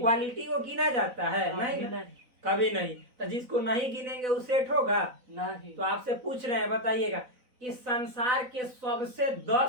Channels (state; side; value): late; left; 4.0 ms